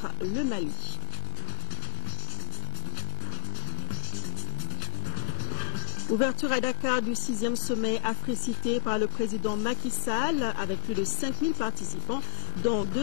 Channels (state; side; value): silent; right; digital silence